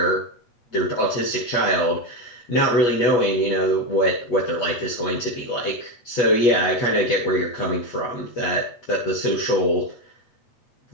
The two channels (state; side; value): late; right; 8.3 ms